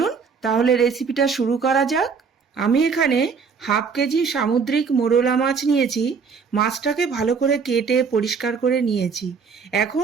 তাহলে রেসিপিটা শুরু করা যাক। আমি এখানে হাফ কেজি সামুদ্রিক মোরলা মাছ নিয়েছি। মাছটাকে ভালো করে কেটে পরিষ্কার করে নিয়েছি।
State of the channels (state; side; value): quieter; left; 5.6 dB